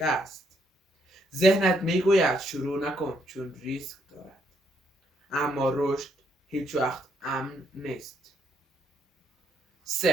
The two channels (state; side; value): normal; both; correlation 0.73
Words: ذهنت میگوید شروع نکن چون ریسک دارد، اما رشد هیچ وقت امن نیست.